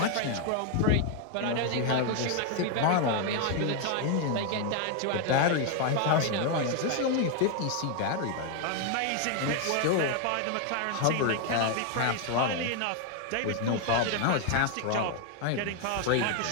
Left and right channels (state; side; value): different; both; correlation 0.01